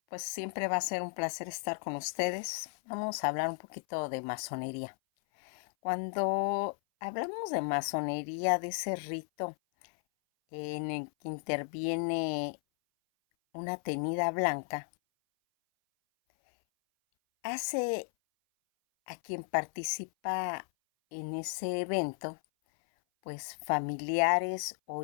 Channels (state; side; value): silent; right; 55 dB below the other